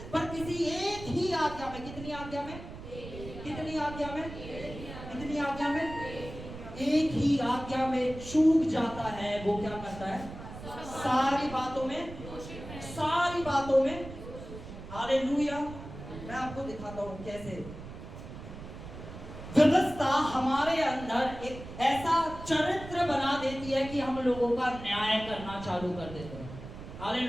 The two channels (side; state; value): right; noise; rumble, 12 dB below the sound